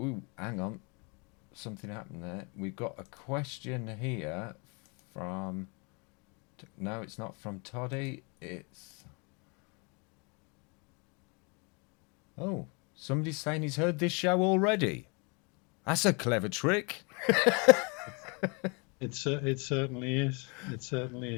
hang on, something happened there. We've got a question here from. No, it's not from Toddy. It's. Oh, somebody's saying he's heard this show already. That's a clever trick. It certainly is. It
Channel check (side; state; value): right; quieter; 32.3 dB